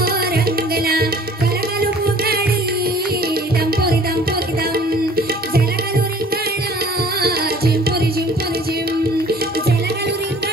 रंगला. कलकलू फुगडी दंपोरी दंपोरी दम, जलकलू रिंगणा जिंपोरी जिंपोरी जिम, जलकलू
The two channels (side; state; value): both; normal; correlation 0.51